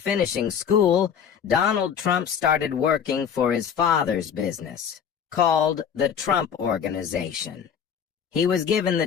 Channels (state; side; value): quieter; right; 7.8 dB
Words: school, Donald Trump started working for his father's business, called the Trump Organization. He was given the